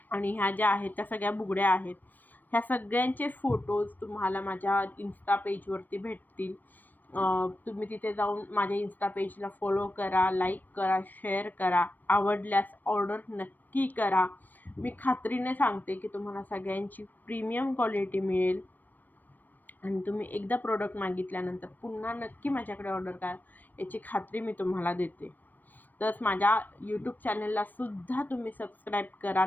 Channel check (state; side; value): late; right; 0.088 ms